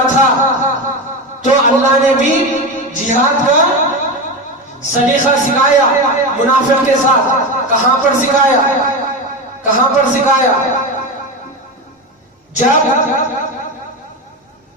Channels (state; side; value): normal; both; correlation 0.19